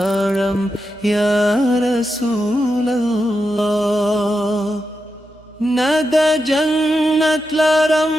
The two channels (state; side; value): noise; right; hum, 27 dB below the sound